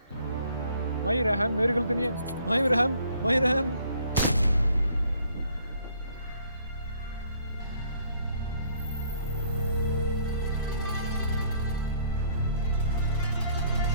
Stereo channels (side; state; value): both; inverted; correlation -0.63